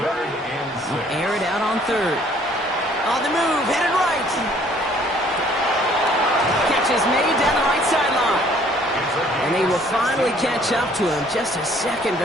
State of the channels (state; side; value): normal; both; correlation 0.59